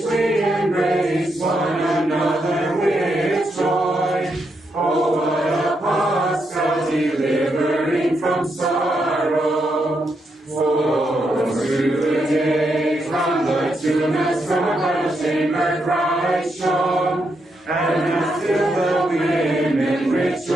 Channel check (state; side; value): normal; both; correlation 0.81